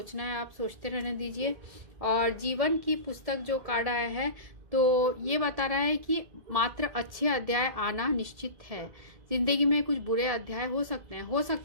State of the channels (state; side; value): late; left; 1.7 ms